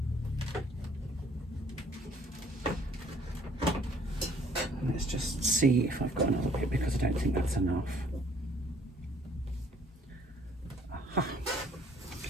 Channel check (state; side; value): normal; both; correlation 0.59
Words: Let's just see if I've got another bit, because I don't think that's enough. Aha.